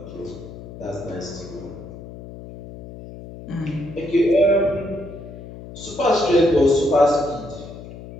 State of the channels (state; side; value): noise; left; hum, 14 dB below the sound